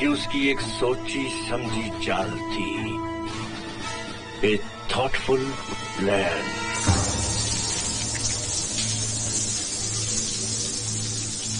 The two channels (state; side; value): identical; both; correlation 1.00